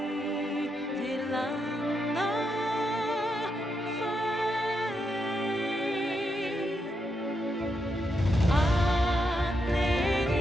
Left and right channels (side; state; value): both; normal; correlation 0.82